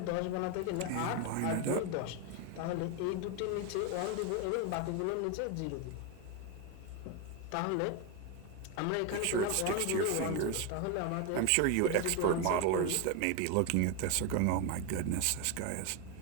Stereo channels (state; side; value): different; both; correlation 0.02